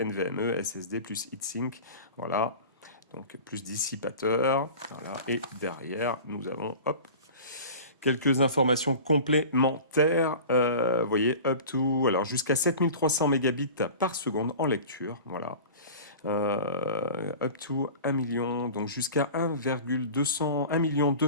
NVMe, SSD plus heatsink. Voilà. Donc plus dissipateur. Voilà. Et derrière, nous avons hop, quelques informations complémentaires. Vous voyez, up to, alors jusqu'à 7300 mégabits par seconde en lecture. Voilà. Up to 1 million, donc jusqu'à 1,200, 1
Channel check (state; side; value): inverted; both; correlation -0.38